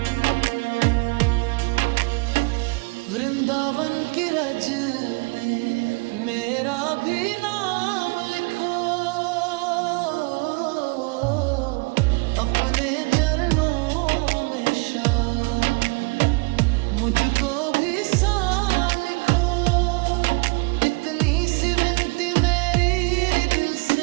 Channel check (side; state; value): left; quieter; 29.2 dB